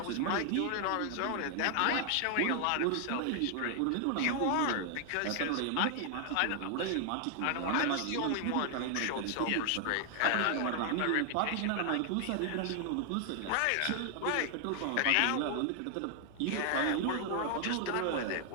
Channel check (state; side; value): different; both; correlation 0.00